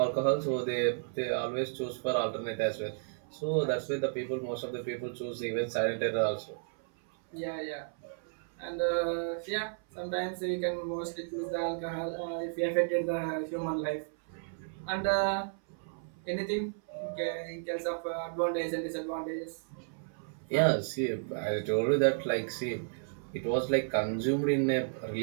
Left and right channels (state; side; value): silent; left; 56 dB below the other